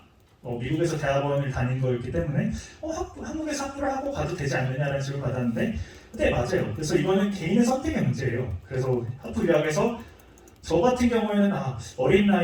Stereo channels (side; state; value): both; identical; correlation 1.00